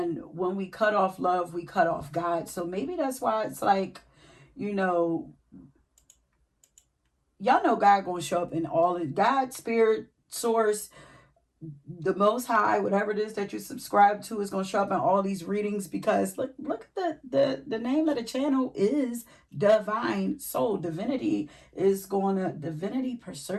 when we cut off love, we cut off God. So maybe that's why it's like, y'all know God gonna show up in all of God, spirit, source, the Most High, whatever it is that you subscribe to, is going to show up in all these readings. Because look at the name of the channel is Divine Soul. Divinity is going to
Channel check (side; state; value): both; identical; correlation 1.00